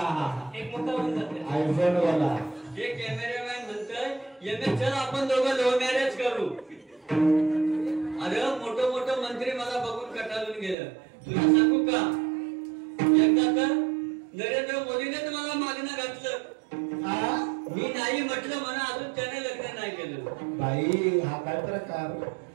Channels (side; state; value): left; drops out; at 10.8 s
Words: हे कॅमेरामॅन म्हणतोय चल आपण दोघं लव्ह मॅरेज करू. अरे मोठं मोठं मंत्री मला बघून कटाळून गेलं. तुला सांगू का, एकदा तर नरेंद्र मोदीने मला मागणं घातलं. मी नाही म्हटलं म्हणा, अजून त्याने लग्न नाही केलं. बाई हा काय प्रकार?